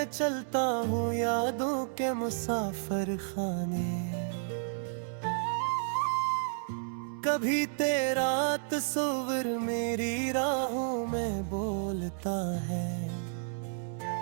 चलता हूँ यादों के मुसाफिर खाने। कभी तेरा तस्वीर मेरी राहों में बोलता है।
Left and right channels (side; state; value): left; silent; 57 dB below the other